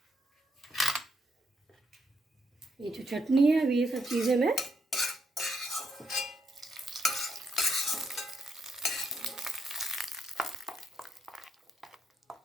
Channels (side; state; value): both; normal; correlation 0.77